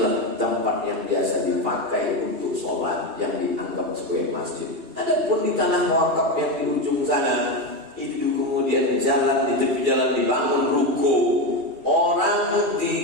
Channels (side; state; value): left; late; 2.4 ms